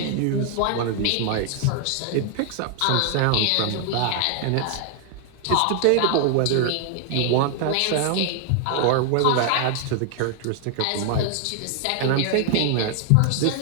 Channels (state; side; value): different; both; correlation 0.00